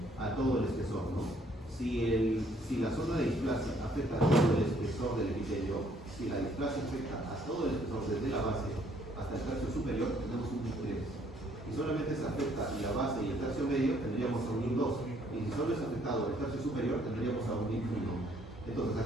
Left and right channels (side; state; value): both; normal; correlation 0.65